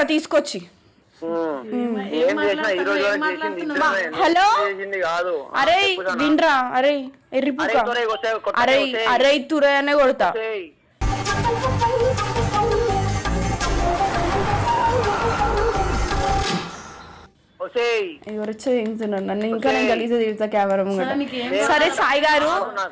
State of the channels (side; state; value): both; identical; correlation 1.00